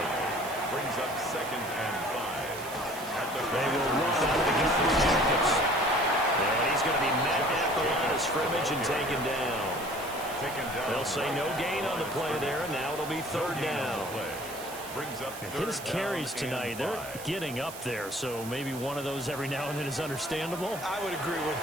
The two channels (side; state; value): right; noise; hiss, 13 dB below the sound